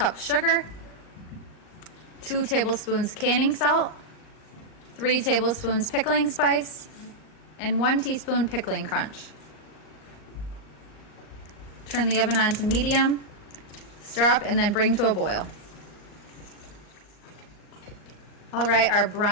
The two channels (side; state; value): right; late; 38 ms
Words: sugar, 2 tablespoons canning salt, 3 tablespoons pickling spice, and 1 teaspoon pickling crunch. Turn the oven on to medium, stir up, and then bring to a boil. All right, our